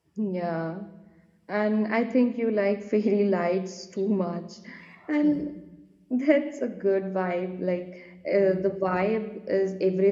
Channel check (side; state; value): both; identical; correlation 1.00